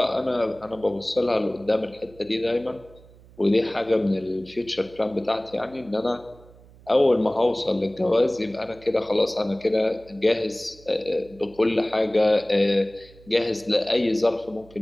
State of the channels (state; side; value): noise; right; hum, 24 dB below the sound